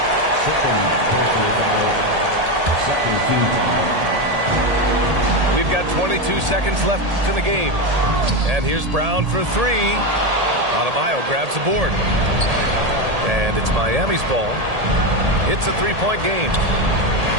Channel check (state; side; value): late; left; 1.8 ms